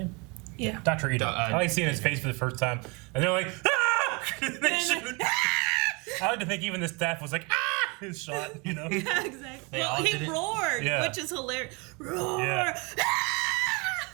Yeah. Dr. Ito. I like seeing his face for the first time, and they're like, ah! They shoot. I like to think even the staff was like, ah! His shot, you know. Yeah, exactly. They Well, all he did it. roared, Yeah. which is hilarious. Roar! Yeah.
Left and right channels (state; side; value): quieter; left; 29.7 dB